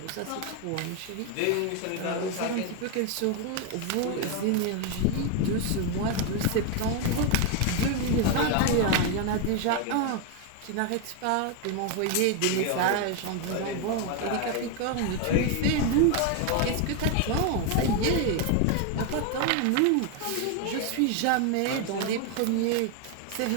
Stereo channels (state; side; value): different; both; correlation 0.01